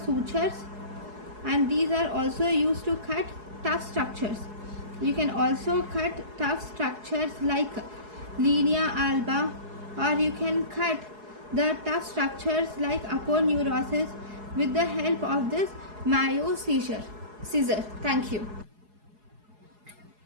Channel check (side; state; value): left; late; 4.7 ms